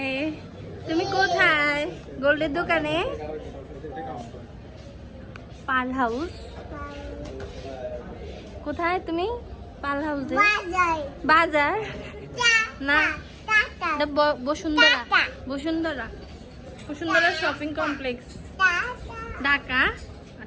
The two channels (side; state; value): both; identical; correlation 1.00